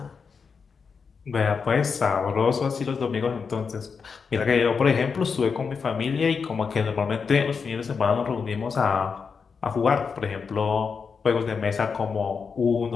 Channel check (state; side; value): quieter; right; 5.6 dB